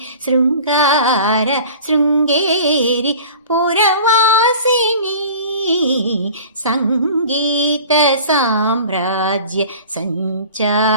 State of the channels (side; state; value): both; inverted; correlation -0.42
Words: ಶೃಂಗಾರ ಶೃಂಗೇರಿ ಪುರವಾಸಿನಿ ಸಂಗೀತ ಸಾಮ್ರಾಜ್ಯ